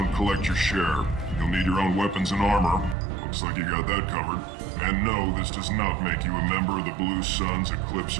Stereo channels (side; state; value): left; drops out; at 3.0 s